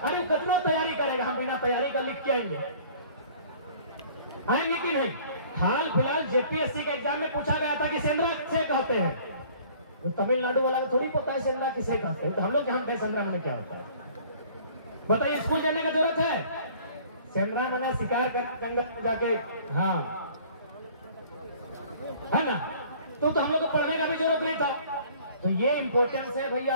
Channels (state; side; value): inverted; both; correlation -0.52